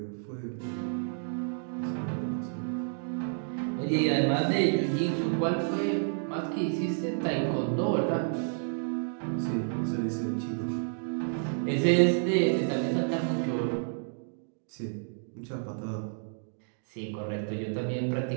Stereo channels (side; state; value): left; silent; digital silence